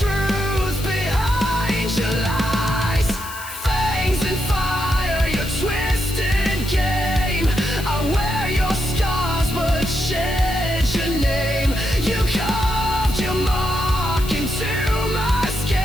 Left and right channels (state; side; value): noise; left; hiss, 13 dB below the sound